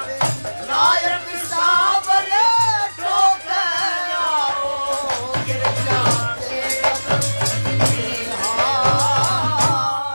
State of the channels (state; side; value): inverted; both; correlation -1.00